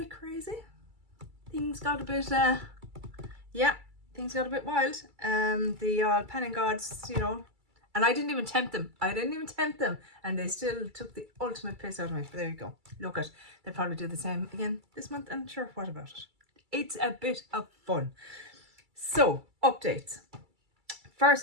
crazy. Things got a bit, things got a bit wild. The panning gods, and I didn't even tempt them. And they still took the ultimate piss out of me. But there you go. Look at, they'll probably do the same again this month, and sure, what about it? It's a bit of fun. So, updates.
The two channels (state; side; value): late; left; 2.3 ms